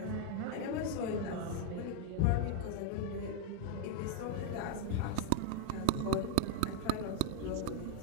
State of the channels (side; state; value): both; different; correlation 0.01